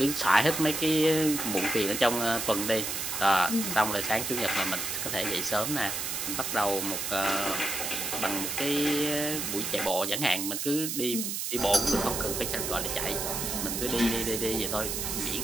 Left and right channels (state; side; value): noise; right; hiss, 3 dB below the sound